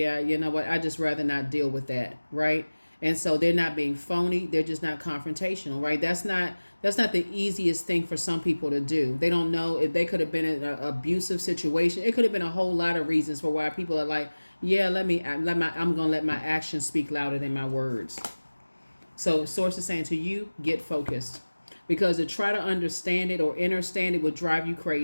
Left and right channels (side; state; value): both; inverted; correlation -1.00